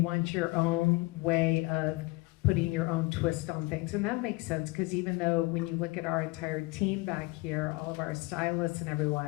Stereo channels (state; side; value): quieter; right; 22.9 dB